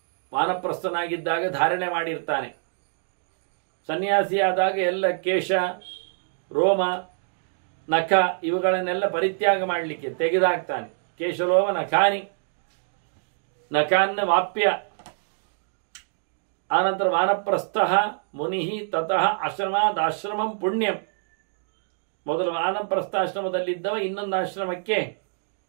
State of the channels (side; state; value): left; silent; digital silence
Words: ವಾನಪ್ರಸ್ಥನಾಗಿದ್ದಾಗ ಧಾರಣೆ ಮಾಡಿರ್ತಾನೆ. ಸನ್ಯಾಸಿಯಾದಾಗ ಎಲ್ಲ ಕೇಶ, ರೋಮ, ನಖ ಇವುಗಳನ್ನೆಲ್ಲ ಪರಿತ್ಯಾಗ ಮಾಡಲಿಕ್ಕೆ ತೆಗೆದಾಕ್ತಾನೆ. ಕೇಶಲೋಮ ನಖಾನಿ, ನಕಾನ್ನ ವಾಪ್ಯ. ಆನಂತರ ವಾನಪ್ರಸ್ಥ ಮುನಿ ತತಃ ಆಶ್ರಮಾದಾಶ್ರಮಂ ಪುಣ್ಯಂ. ಮೊದಲು ವಾನಪ್ರಸ್ಥಾಶ್ರಮದಲ್ಲಿದ್ದವ ಇನ್ನೊಂದು ಆಶ್ರಮಕ್ಕೆ